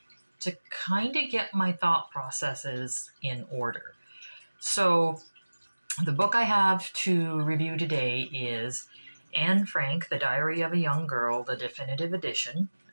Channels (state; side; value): inverted; both; correlation -1.00